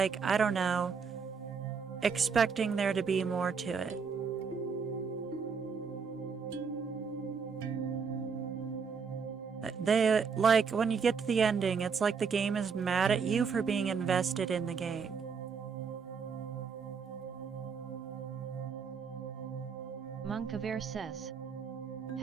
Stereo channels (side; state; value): left; quieter; 5.8 dB